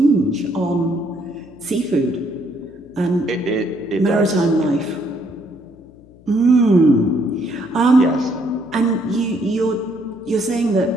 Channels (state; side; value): noise; left; hum, 26 dB below the sound